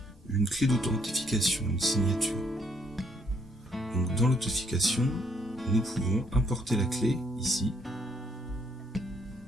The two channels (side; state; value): both; normal; correlation 0.69